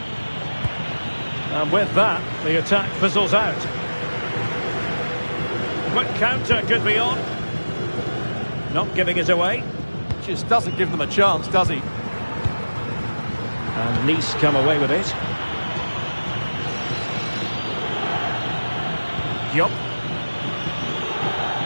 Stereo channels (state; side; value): inverted; both; correlation -1.00